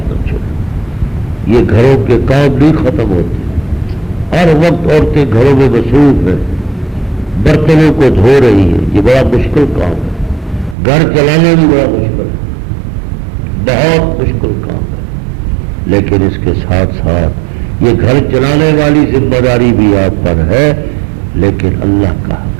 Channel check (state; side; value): drops out; left; at 10.8 s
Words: نہ چھوڑو۔ یہ گھروں کے کام نہیں ختم ہوتے، ہر وقت عورتیں گھروں میں مصروف ہیں، برتنوں کو دھو رہی ہیں، یہ بڑا مشکل کام ہے، گھر چلانا بھی بڑا مشکل ہے، بہت مشکل کام ہے، لیکن اس کے ساتھ ساتھ یہ گھر چلانے والی ذمہ داری بھی آپ پر ہے، لیکن اللہ کا